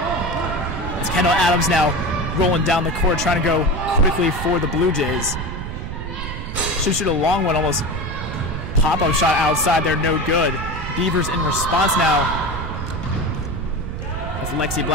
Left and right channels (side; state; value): right; noise; rumble, 6 dB below the sound